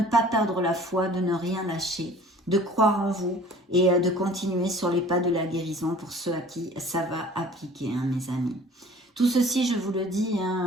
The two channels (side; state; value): both; normal; correlation 0.48